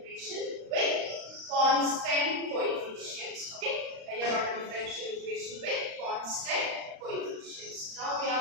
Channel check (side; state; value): left; late; 35 ms